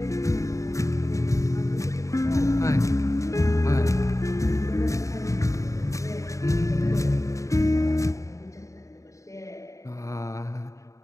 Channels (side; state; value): right; late; 0.15 ms